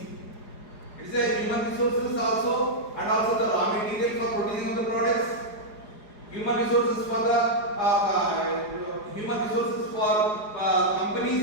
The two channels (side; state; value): right; late; 4.8 ms